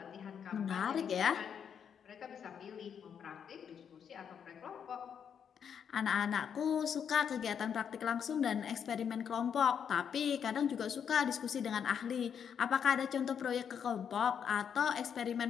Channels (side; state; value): right; quieter; 7.8 dB